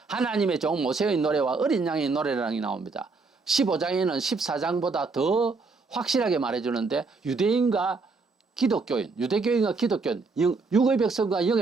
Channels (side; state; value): left; quieter; 4.1 dB